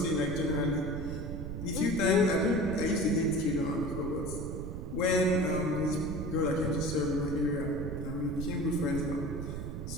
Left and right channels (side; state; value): right; noise; rumble, 6 dB below the sound